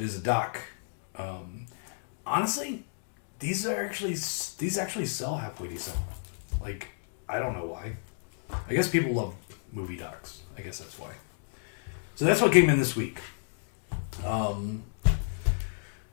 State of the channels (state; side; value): silent; right; digital silence